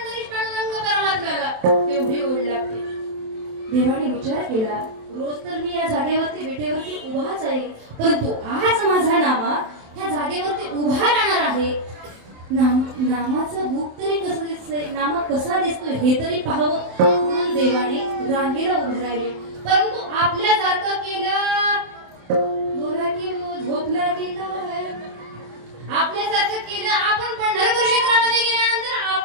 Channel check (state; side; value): late; left; 27 ms